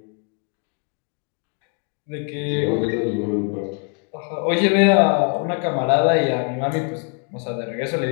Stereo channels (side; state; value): right; quieter; 38.8 dB